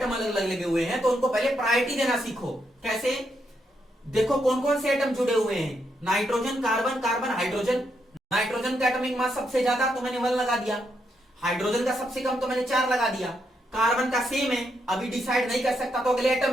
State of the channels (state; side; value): normal; both; correlation 0.79